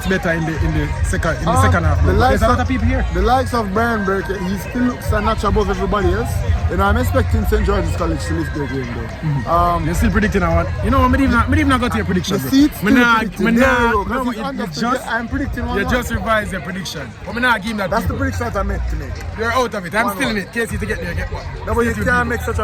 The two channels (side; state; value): both; identical; correlation 1.00